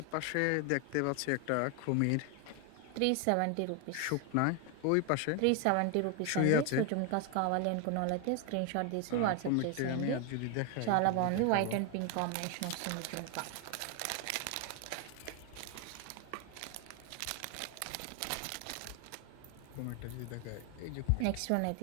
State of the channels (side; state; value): both; different; correlation 0.01